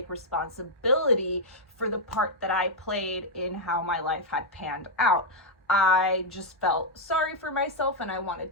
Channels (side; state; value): both; normal; correlation -0.02